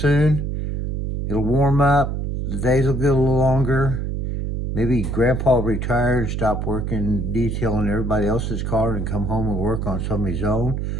It'll warm up, the days will get a little longer. Maybe Grandpa will retire and stop working detailing everybody else's car and come home and work on some of his own.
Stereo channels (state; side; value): noise; right; hum, 2 dB below the sound